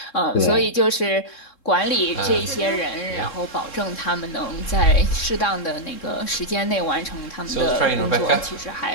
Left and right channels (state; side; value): late; right; 3.7 ms